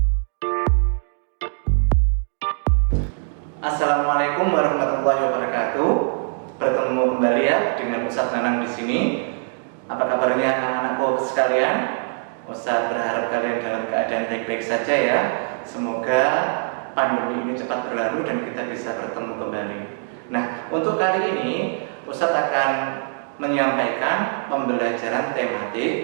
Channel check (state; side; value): silent; left; digital silence